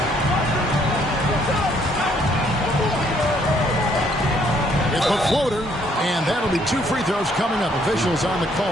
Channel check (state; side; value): normal; both; correlation 0.67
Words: It's a floater, and that'll be 2 free throws coming up. Officials on the